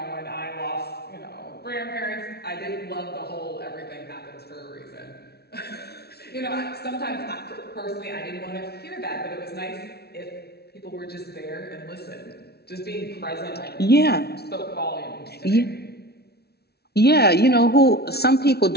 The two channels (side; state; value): right; late; 0.47 ms